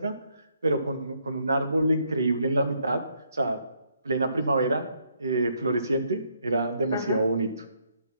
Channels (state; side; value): inverted; both; correlation -0.72